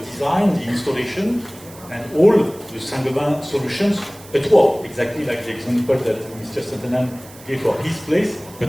the installation, and all the Saint-Gobain solutions at work, exactly like the example that Mr. Santhanam gave for his place,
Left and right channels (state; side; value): noise; right; hiss, 21 dB below the sound